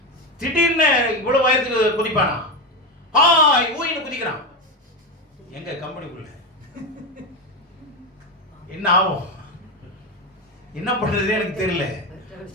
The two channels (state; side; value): normal; both; correlation 0.15